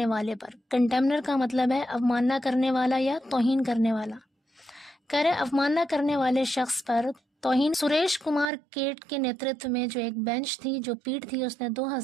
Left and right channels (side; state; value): left; drops out; at 8.5 s